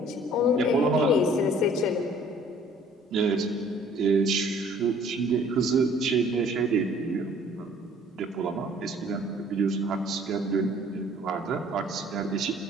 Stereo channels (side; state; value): both; normal; correlation 0.55